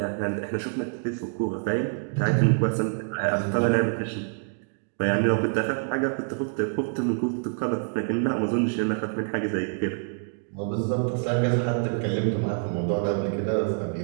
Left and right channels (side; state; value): left; silent; 61 dB below the other